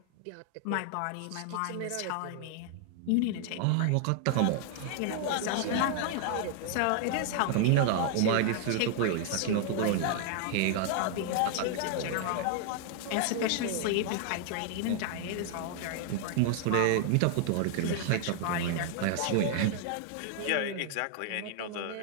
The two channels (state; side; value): different; both; correlation 0.00